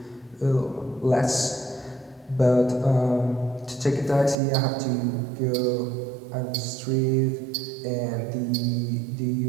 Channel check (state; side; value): drops out; left; at 4.4 s